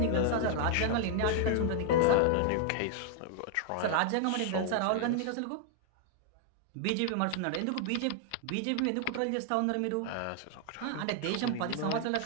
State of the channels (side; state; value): both; different; correlation 0.00